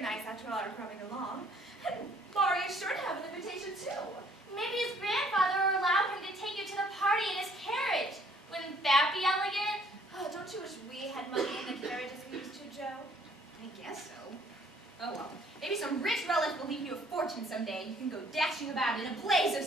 after all our crumbing along. And Laurie is sure to have an invitation, too. Maybe his grandfather will allow him to take you to the party in his carriage. Wouldn't that be elegant? Oh, don't you wish we had money in the carriage as we used to, Joe? I guess so. Oh well. Maybe some rich relative will leave you a fortune someday, and you can go dashing about in a blaze of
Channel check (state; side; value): normal; both; correlation 0.61